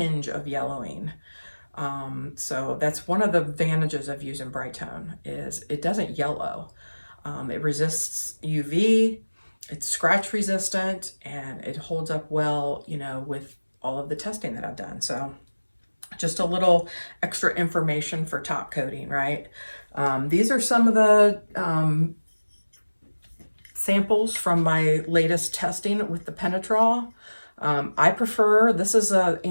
of yellowing. So that's one of the advantages of using Bright Tone, is it doesn't yellow. It resists UV, it's scratch resistant, and it holds up well, you know, with all of the testing that I've done. So just a little extra information for top coating, right? These are some of the samples from my latest testing with the Penetrol. I prefer, this is a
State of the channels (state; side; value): inverted; both; correlation -1.00